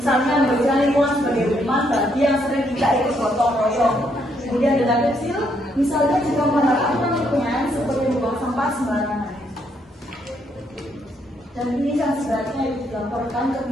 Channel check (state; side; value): normal; both; correlation 0.73